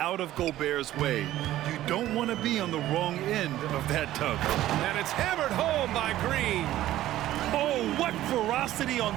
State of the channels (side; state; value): left; quieter; 14.2 dB